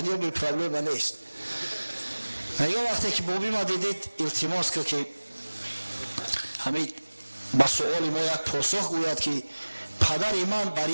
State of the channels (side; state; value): both; inverted; correlation -1.00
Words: بی پرابلم نیست. میگه وقتی که بابی ما دیدید التماس که همین با سوال ما یک پاسخ گوید که پدر من بر